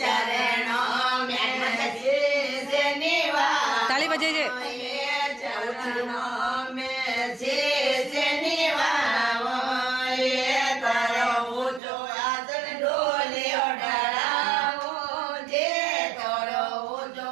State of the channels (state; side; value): drops out; left; at 11.8 s